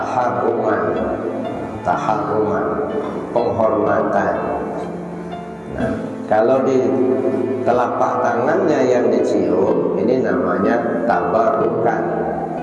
penghormatan. Nah, kalau di telapak tangannya yang dicium, ini namanya tabarukan,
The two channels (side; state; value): both; identical; correlation 1.00